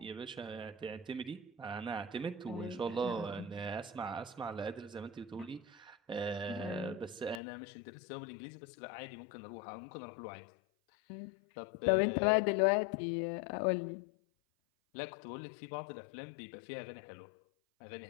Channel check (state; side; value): drops out; right; at 7.4 s